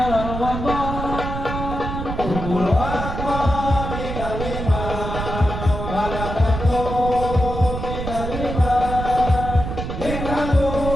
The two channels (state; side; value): noise; right; rumble, 5 dB below the sound